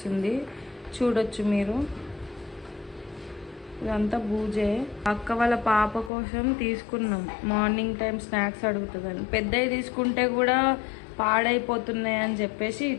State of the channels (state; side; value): drops out; right; at 6.1 s